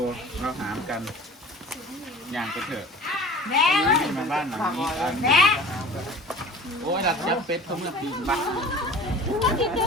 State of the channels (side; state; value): both; normal; correlation 0.41